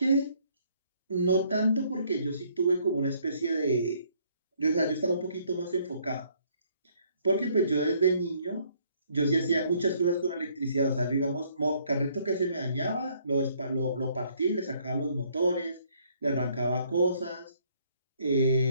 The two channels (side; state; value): both; inverted; correlation -0.65